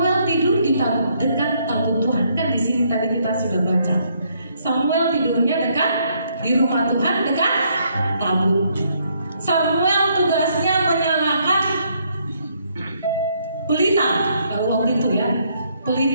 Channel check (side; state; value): both; inverted; correlation -0.70